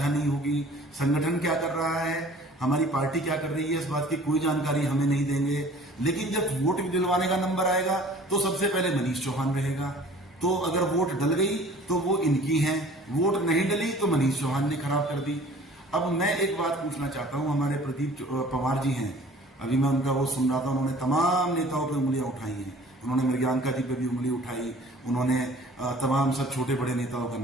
नहीं होगी। संगठन क्या कर रहा है, हमारी पार्टी क्या कर रही है, इस बात की कोई जानकारी हमें नहीं देंगे। लेकिन जब वोट दिलवाने का नंबर आएगा तो सबसे पहले मनीष चौहान रहेगा। तो अगर वोट डल गई तो वो इनकी है, वोट नहीं डली तो मनीष चौहान ने खराब कर दी। अब मैं एक बात पूछना चाहता हूं, हमारे प्रदीप पवार जी हैं, अभी मैं उनका वो सुन रहा था, उन्होंने तमाम नेताओं पर उंगलियां उठाई हैं, उन्होंने मृग्यांका जी पे भी उंगली उठाई, उन्होंने तमाम सब छोटे बड़े नेताओं का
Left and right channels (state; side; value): normal; both; correlation 0.49